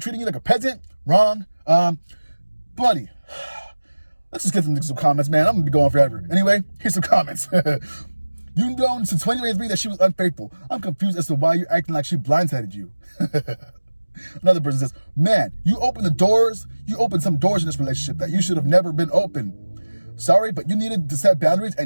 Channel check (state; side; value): inverted; both; correlation -1.00